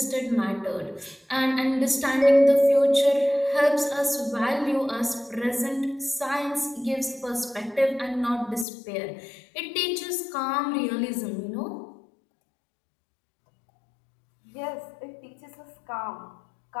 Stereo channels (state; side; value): drops out; right; at 8.7 s